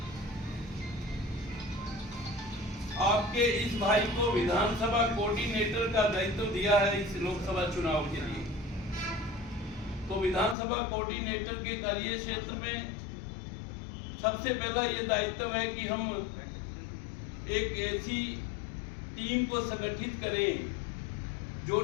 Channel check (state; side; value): drops out; right; at 10.6 s